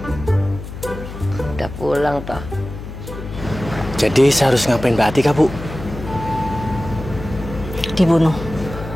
Udah pulang toh. Jadi saya harus ngapain Mbak Atika, Bu? Dibunuh.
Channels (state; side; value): noise; left; hum, 10 dB below the sound